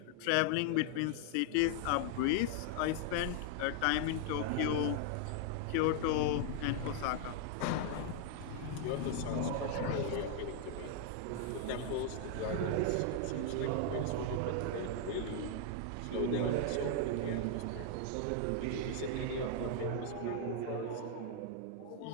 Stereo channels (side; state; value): both; different; correlation 0.00